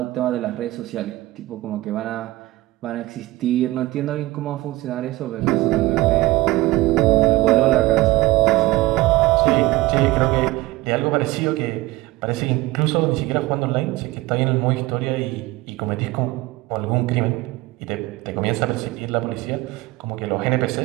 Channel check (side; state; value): left; quieter; 18.9 dB